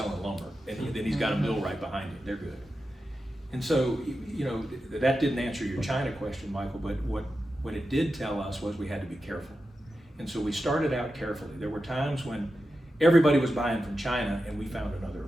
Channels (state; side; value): normal; both; correlation 0.91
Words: lumber, and then he's got a mill right behind him. They're good. And so, that didn't answer your China question, Michael. But what it did tell us was we had to be careful. And so we started out carefully. There were times when everybody was buying from China, and we found another